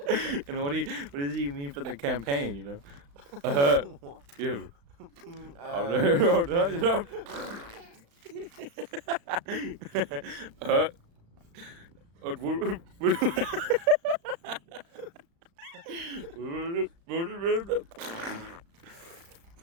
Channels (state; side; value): late; left; 35 ms